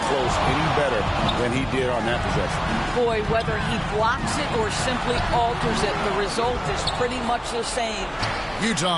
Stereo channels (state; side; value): identical; both; correlation 1.00